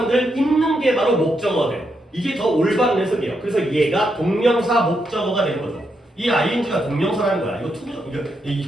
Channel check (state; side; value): normal; both; correlation 0.81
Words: 입는 게 바로 목적어가 돼요. 이게 더 올바른 해석이에요. 그래서 얘가 동명사 목적어가 되는 거죠. 이 ing가 동명사라는 거야. 이거